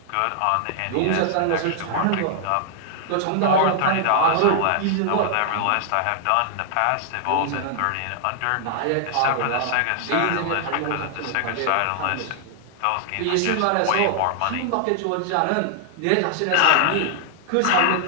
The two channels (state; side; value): different; both; correlation 0.00